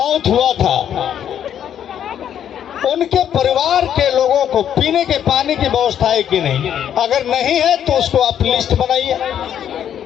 हुआ था उनके परिवार के लोगों को पीने के पानी की व्यवस्था है कि नहीं, अगर नहीं है तो उसको आप लिस्ट बनाइए।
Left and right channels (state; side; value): quieter; right; 9.6 dB